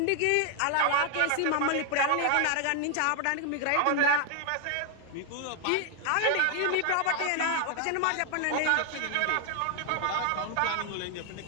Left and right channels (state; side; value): different; both; correlation 0.00